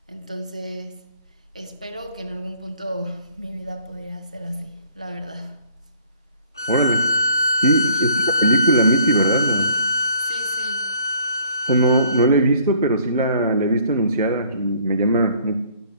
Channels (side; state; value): both; inverted; correlation -0.57